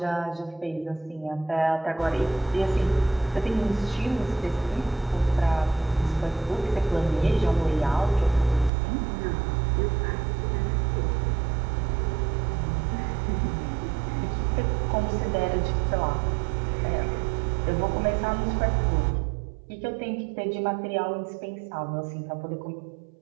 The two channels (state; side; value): drops out; left; at 8.7 s